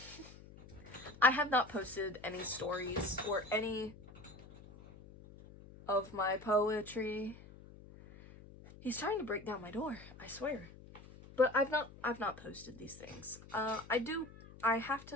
I have not posted any stories or any of my poetry. He's trying to break down my door, I swear. But I've not posted these things. I have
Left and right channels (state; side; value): noise; left; hum, 18 dB below the sound